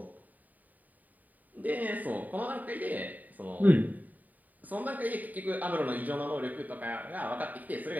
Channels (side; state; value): left; late; 0.081 ms